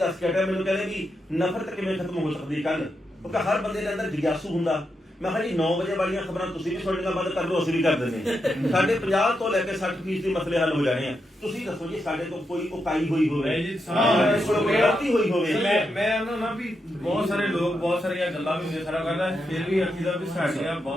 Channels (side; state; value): both; normal; correlation 0.84